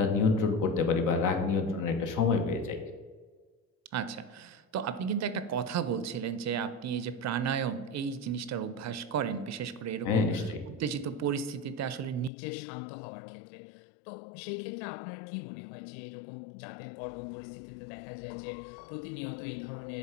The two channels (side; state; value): right; drops out; at 12.3 s